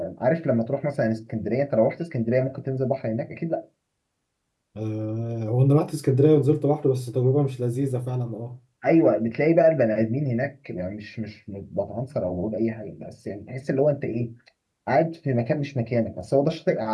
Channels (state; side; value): identical; both; correlation 1.00